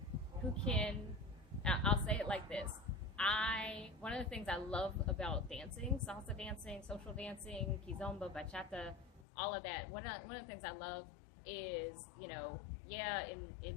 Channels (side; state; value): right; drops out; at 9.2 s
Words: I'll say it like this. One of the things I love about dancing, salsa dancing, social dancing, kizomba, bachata, all of that. One of the things I love is,